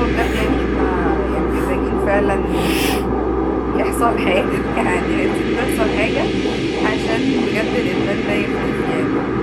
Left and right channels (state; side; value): identical; both; correlation 1.00